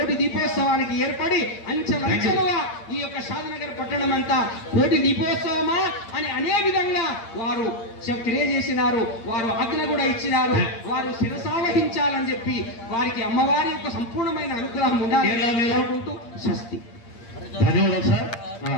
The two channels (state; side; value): late; right; 8.7 ms